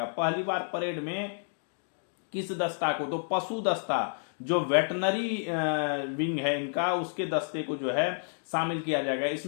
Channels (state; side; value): silent; right; digital silence